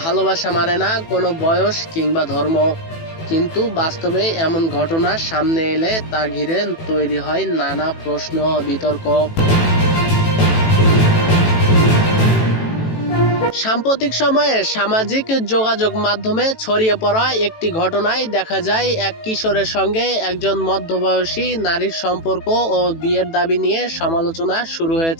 ভালোবাসা মানে না কোনো বয়স কিংবা ধর্ম, কিন্তু বাস্তবে এমন ঘটনা সামনে এলে তা ঘিরে তৈরি হয় নানা প্রশ্ন ও বিতর্ক। সাম্প্রতিক সময়ে সামাজিক যোগাযোগ মাধ্যমে ছড়িয়ে পড়া একটি ঘটনায় দেখা যায় এক কিশোরের সঙ্গে একজন মধ্যবয়সী নারীর সম্পর্ক ও বিয়ের দাবি নিয়ে সমালোচনা শুরু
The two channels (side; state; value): right; late; 18 ms